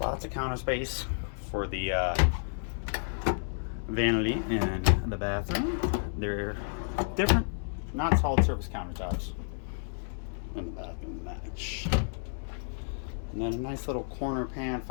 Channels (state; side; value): silent; right; digital silence